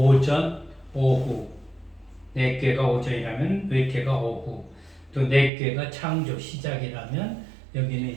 오후, 4개가 오전이라면 외계가 오후, 또 4개가 창조 시작이라면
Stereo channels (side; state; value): left; drops out; at 5.5 s